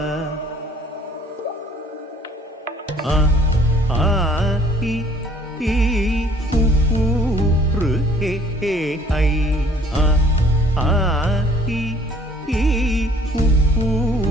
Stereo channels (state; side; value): normal; both; correlation 0.56